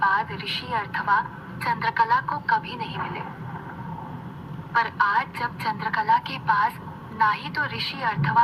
ऋषि अर्थवा चंद्रकला को कभी नहीं मिले। पर आज जब चंद्रकला के पास ना ही तो ऋषि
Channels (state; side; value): identical; both; correlation 1.00